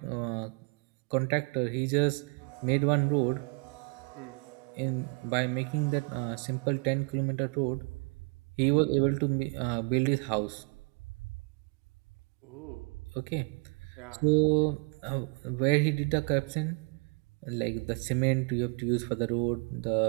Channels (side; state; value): left; quieter; 34.8 dB